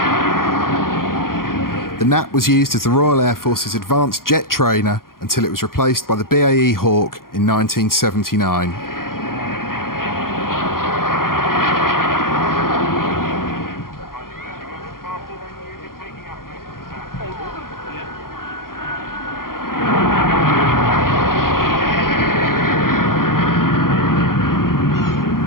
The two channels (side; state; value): right; late; 0.92 ms